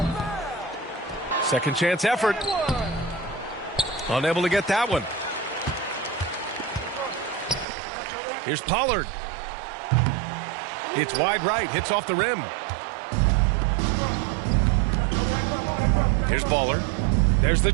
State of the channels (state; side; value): drops out; left; at 7.7 s